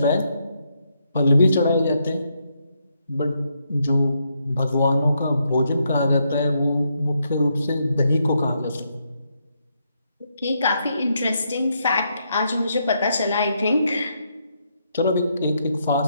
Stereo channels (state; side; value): inverted; both; correlation -0.78